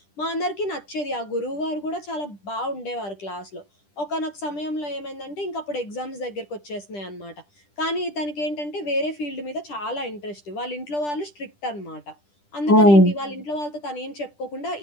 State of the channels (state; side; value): late; right; 10 ms